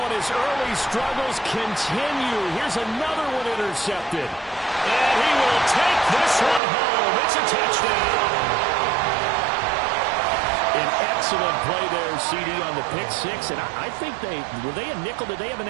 and his early struggles continue. Here's another one intercepted. And he will take this one home. It's a touchdown. An excellent play there, CD, on the pick 6. And I think were they a nickel? Did they have an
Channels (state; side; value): drops out; left; at 6.6 s